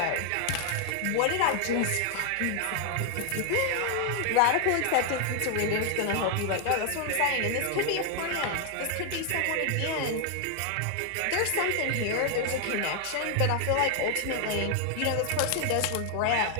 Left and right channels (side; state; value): both; different; correlation 0.00